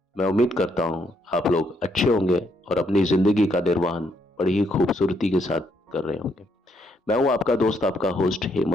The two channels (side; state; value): both; normal; correlation 0.74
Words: मैं उम्मीद करता हूं आप लोग अच्छे होंगे और अपनी जिंदगी का निर्वहन बड़ी ही खूबसूरती के साथ कर रहे होंगे। मैं हूं आपका दोस्त, आपका होस्ट